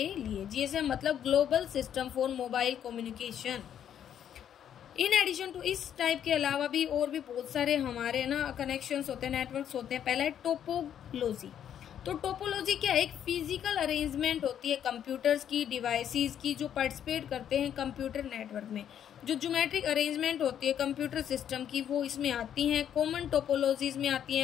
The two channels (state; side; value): quieter; right; 9.6 dB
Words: लिए। GSM मतलब global system for mobile communication. In addition to इस टाइप के अलावा भी और भी बहुत सारे हमारे ना कनेक्शंस होते हैं, नेटवर्क्स होते हैं। पहला है टोपोलॉजी। तो टोपोलॉजी क्या है, एक फिजिकल अरेंजमेंट होती है कंप्यूटर्स की, डिवाइसेस की जो पार्टिसिपेट करते हैं कंप्यूटर नेटवर्क में। जो ज्योमेट्रिक अरेंजमेंट होती है कंप्यूटर सिस्टम की वो इसमें आती हैं। कॉमन टोपोलॉजीज में आती